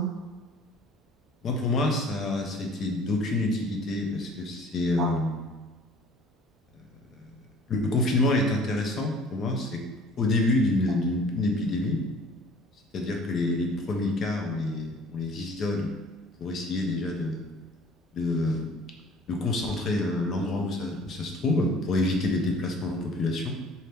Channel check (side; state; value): both; normal; correlation 0.51